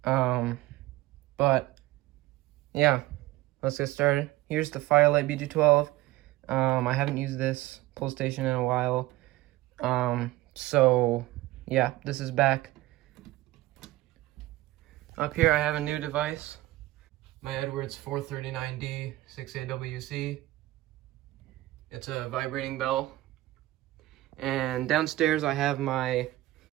But yeah, let's get started. Here's the Firelight BG12. I haven't used this pull station in a while. So yeah, this is back. Up here I have a new device. My Edwards 439D 6AWC. It's a vibrating bell. And downstairs I have my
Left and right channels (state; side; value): quieter; left; 17.5 dB